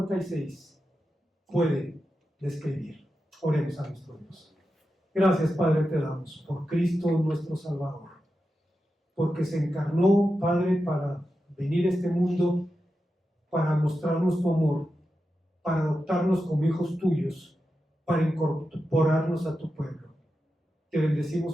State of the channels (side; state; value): both; normal; correlation 0.90